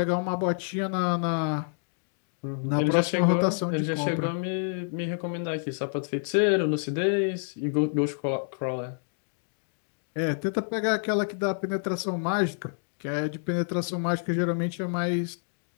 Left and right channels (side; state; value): right; silent; digital silence